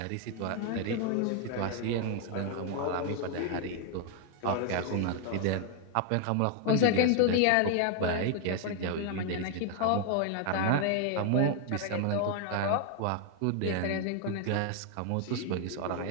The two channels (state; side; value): different; both; correlation 0.00